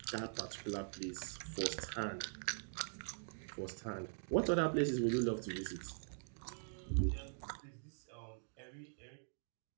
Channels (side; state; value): left; silent; digital silence